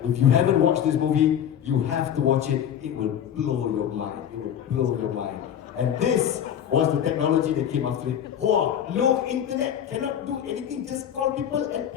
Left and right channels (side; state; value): right; quieter; 9.5 dB